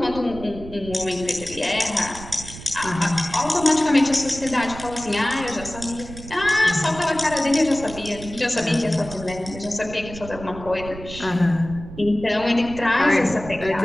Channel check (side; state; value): right; noise; rumble, 13 dB below the sound